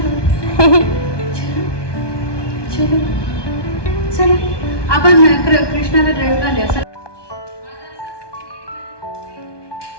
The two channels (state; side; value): late; right; 1.2 ms